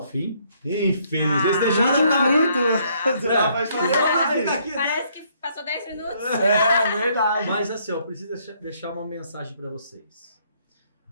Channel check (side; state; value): both; inverted; correlation -0.68